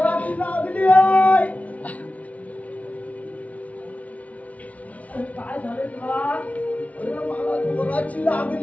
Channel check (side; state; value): right; late; 0.068 ms